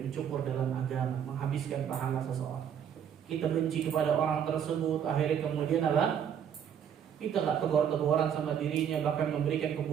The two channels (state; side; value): quieter; left; 8.6 dB